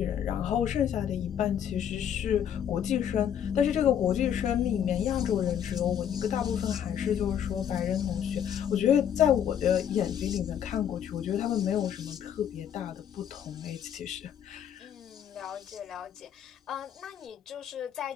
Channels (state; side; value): quieter; right; 9.2 dB